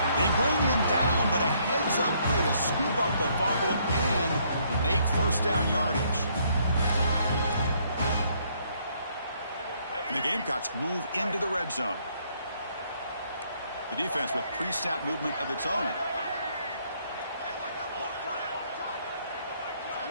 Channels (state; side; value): inverted; both; correlation -0.68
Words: They bring him down, but a heads-up play to scoop up the fumble and make 1st down yardage. And the Gamecocks move into the red zone. The defense with pre-snap movement of its own.